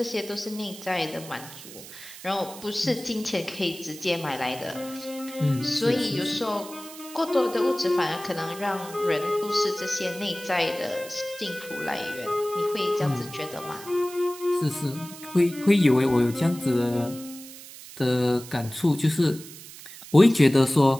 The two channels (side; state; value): right; noise; hiss, 15 dB below the sound